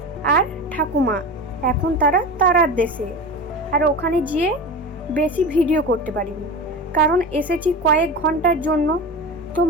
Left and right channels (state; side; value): normal; both; correlation 0.27